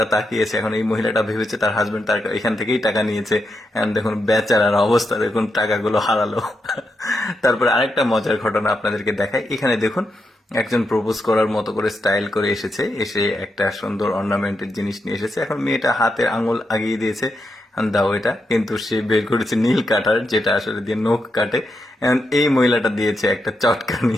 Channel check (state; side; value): normal; both; correlation 0.84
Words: তাকিয়েছে, এখন এই মহিলাটা ভেবেছে তার হাজবেন্ড তার এখান থেকেই টাকা নিয়েছে। এখন দেখুন বেচারার অবস্থা, দেখুন টাকাগুলো হারালো। তারপরে আরেকটা মজার ঘটনা আপনাদেরকে দেখায়। এখানে দেখুন একজন প্রপোজ করার মতো করে স্টাইল করে এসেছে, এসে একটা সুন্দর অর্নামেন্টের জিনিস নিয়ে এসেছে। এখন মেয়েটা হাতের আঙুল আগিয়ে দিয়েছে, দাও এটা, কিন্তু সে বের করেছে নীল কাটার, যেটা আসলে দিয়ে নখ কাটে। এখন এই মহিলাটা দিয়েছে একটা চটকানি,